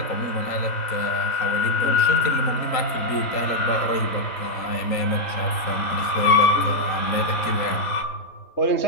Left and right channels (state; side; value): late; right; 3.8 ms